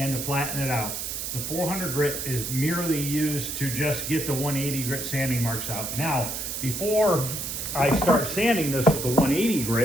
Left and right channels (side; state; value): right; noise; hiss, 4 dB below the sound